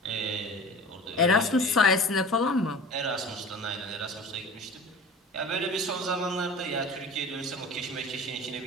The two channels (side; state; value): both; normal; correlation 0.38